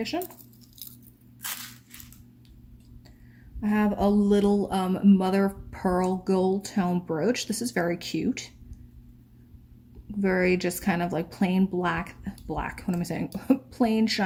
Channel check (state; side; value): identical; both; correlation 1.00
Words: I have a little mother of pearl gold tone brooch. This is very cute. Very just kind of like plain black, what am I saying? Plain